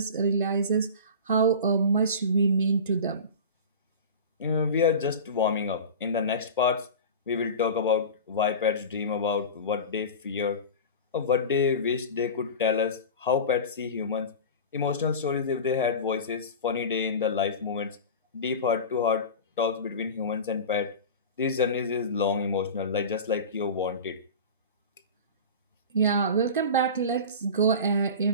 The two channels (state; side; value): inverted; both; correlation -0.31